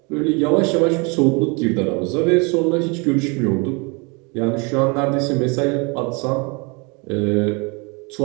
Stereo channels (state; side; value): quieter; left; 30.3 dB